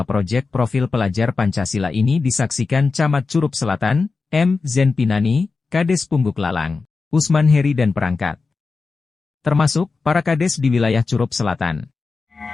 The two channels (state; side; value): quieter; right; 4.3 dB